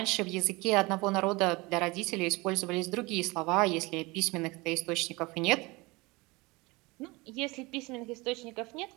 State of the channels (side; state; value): left; quieter; 24.1 dB